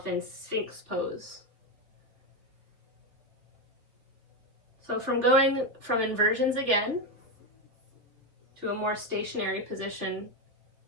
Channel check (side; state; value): left; late; 3.4 ms